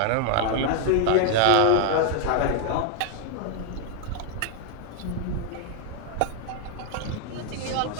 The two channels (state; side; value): different; both; correlation 0.00